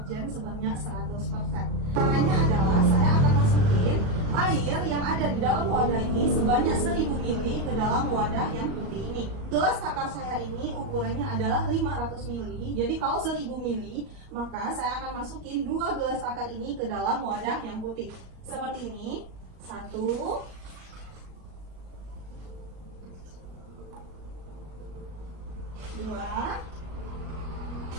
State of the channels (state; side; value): late; left; 37 ms